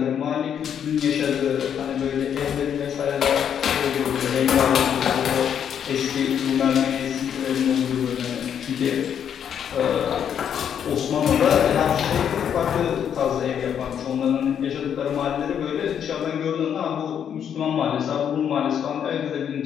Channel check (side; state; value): right; quieter; 8.6 dB